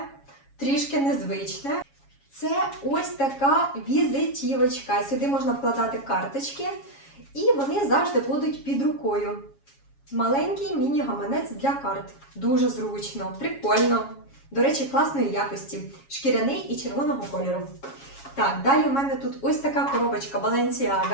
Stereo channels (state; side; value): late; right; 7.3 ms